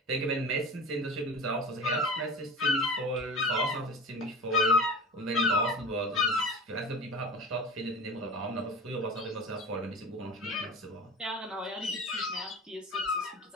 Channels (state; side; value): normal; both; correlation 0.33